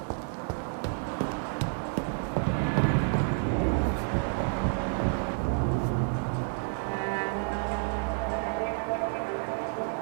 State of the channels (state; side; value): silent; left; 58 dB below the other